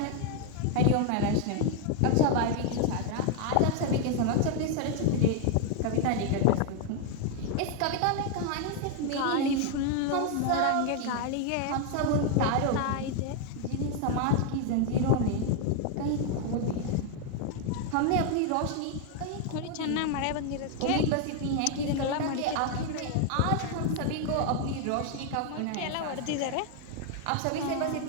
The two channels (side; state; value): both; different; correlation 0.01